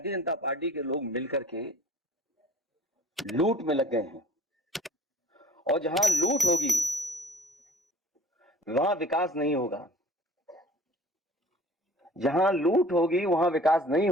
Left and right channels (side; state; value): both; normal; correlation 0.51